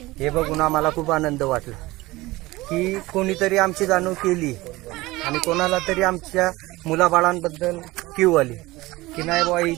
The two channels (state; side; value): quieter; left; 20.0 dB